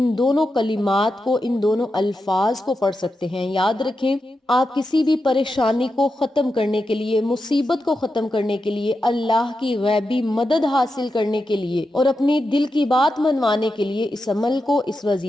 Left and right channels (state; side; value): normal; both; correlation 0.88